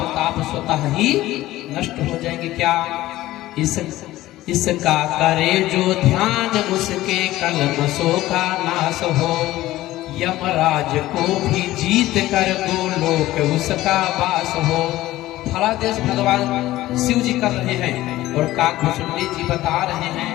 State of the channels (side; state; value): right; quieter; 16.1 dB